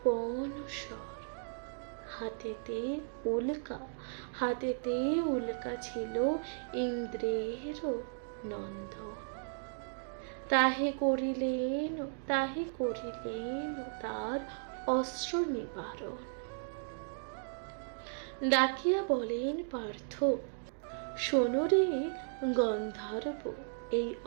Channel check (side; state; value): left; silent; digital silence